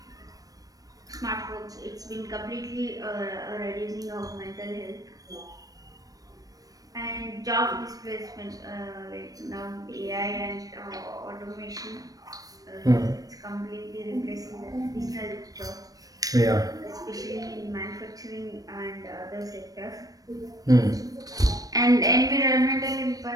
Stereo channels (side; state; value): left; late; 0.18 ms